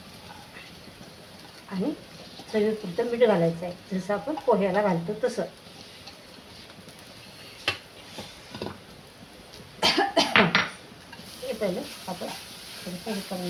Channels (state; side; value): identical; both; correlation 1.00